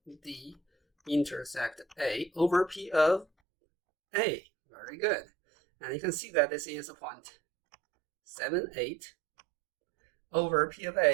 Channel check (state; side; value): drops out; left; at 3.2 s